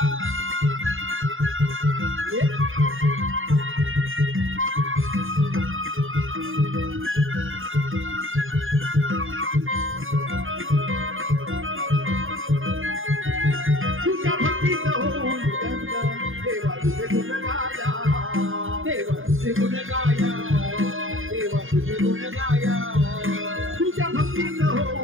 तुझ्या भक्तीत होऊन देवा तुझे गुण गाया देवा तुझे गुण गाया देवा तुझे गुण गाया तुझ्या भक्तीत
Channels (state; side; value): late; left; 0.59 ms